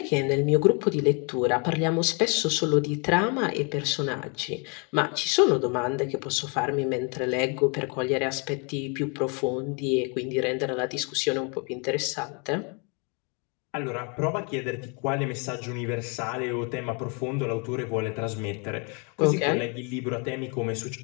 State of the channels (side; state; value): right; quieter; 34.4 dB